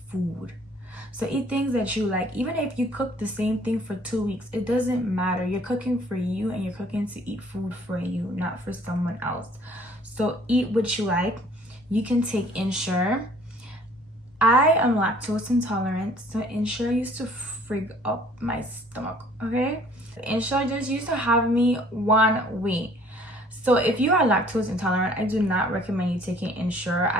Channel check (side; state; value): both; normal; correlation 0.56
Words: food. So eat things that you like. Even if you cook the same thing for 2 weeks, it doesn't matter. You're cooking for you, and you're cooking to eat food for you, not for someone else. So eat what you like. You can take Ensure. I am lactose intolerant, so Ensure used to frig up my stomach, okay? Ensure just used to have me one way. So if you are lactose intolerant, I do not recommend you taking Ensure.